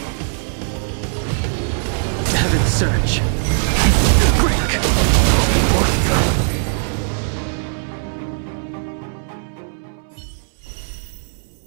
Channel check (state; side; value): silent; left; 66 dB below the other